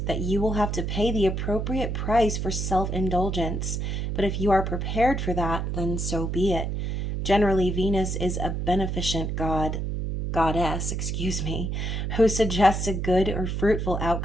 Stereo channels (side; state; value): right; noise; hum, 2 dB below the sound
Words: that you will have to pay the appropriate price for self-indulgence, but if you are prepared for that, then so be it. Generally, Venus is a beneficent goddess, who suggests a good or fruitful